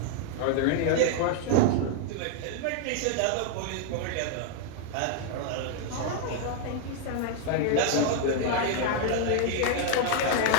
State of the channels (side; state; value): both; different; correlation 0.00